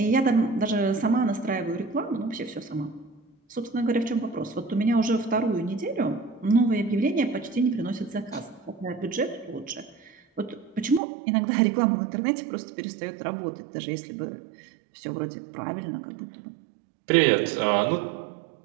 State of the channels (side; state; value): left; drops out; at 11.0 s